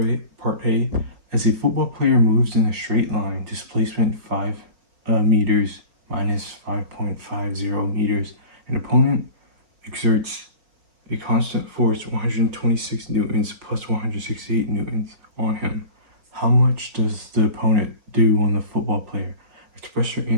A, as a football player moves in a straight line, displacement 5 meters minus 5.50 meters, an opponent exerts a constant force 126 newtons plus 168 newtons on him. How much does the opponent do on the football player? Express your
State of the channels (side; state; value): left; late; 4.8 ms